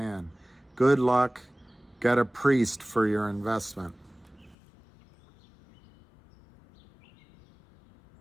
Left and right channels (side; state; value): right; drops out; at 4.5 s